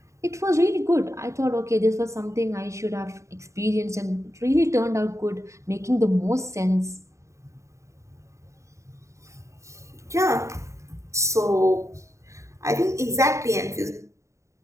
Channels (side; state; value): left; late; 0.14 ms